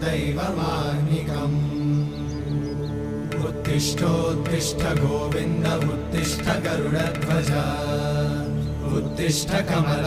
दैवमाह्निकम् उत्तिष्ठोत्तिष्ठ गोविन्द उत्तिष्ठ गरुडध्वज उत्तिष्ठ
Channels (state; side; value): identical; both; correlation 1.00